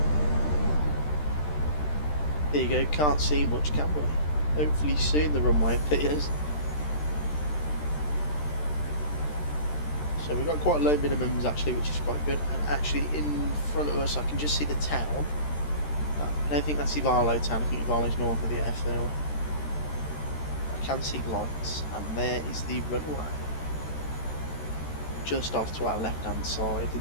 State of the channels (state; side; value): late; right; 13 ms